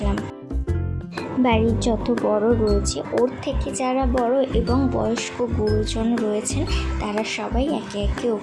বাড়ির যত বড় রয়েছে, ওর থেকে যারা বড় এবং বয়স্ক গুরুজন রয়েছেন, তারা সবাই একে একে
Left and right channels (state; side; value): identical; both; correlation 1.00